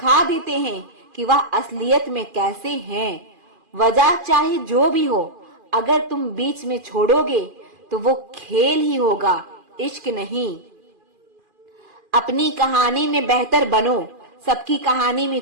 देते हैं कि वह असलियत में कैसे हैं। वजह चाहे जो भी हो, अगर तुम बीच में छोड़ोगे तो वो खेल ही होगा, इश्क नहीं। अपनी कहानी में बेहतर बनो, सबकी कहानी में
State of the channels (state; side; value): late; left; 2.4 ms